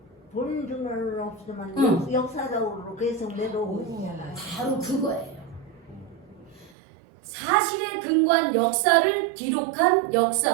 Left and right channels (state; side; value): drops out; left; at 6.7 s